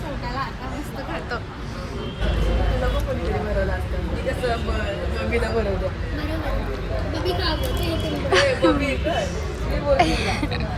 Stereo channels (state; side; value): identical; both; correlation 1.00